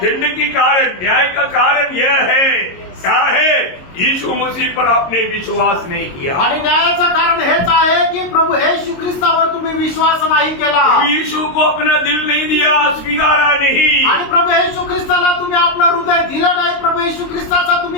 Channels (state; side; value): late; right; 22 ms